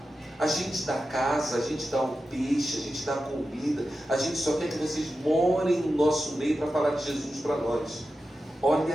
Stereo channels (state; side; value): normal; both; correlation 0.92